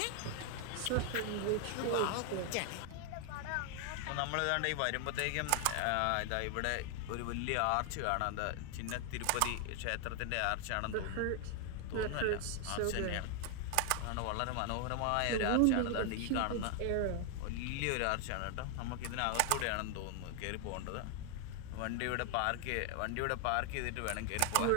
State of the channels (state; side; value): different; both; correlation 0.00